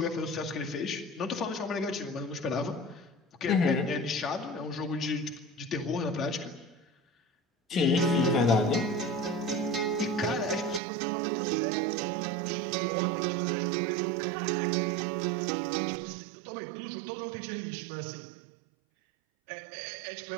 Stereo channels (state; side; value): drops out; left; at 10.8 s